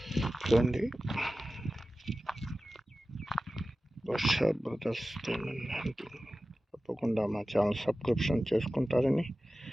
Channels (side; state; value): both; normal; correlation 0.95